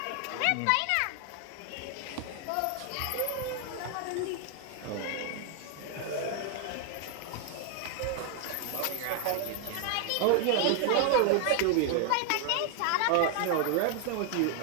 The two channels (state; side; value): different; both; correlation 0.00